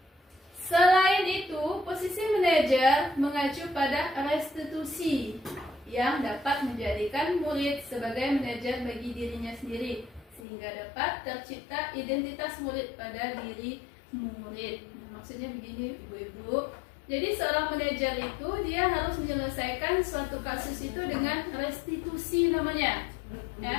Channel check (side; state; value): right; drops out; at 10.4 s